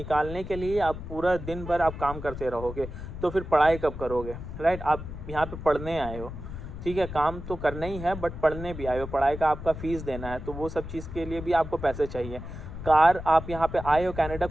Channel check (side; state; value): left; noise; rumble, 9 dB below the sound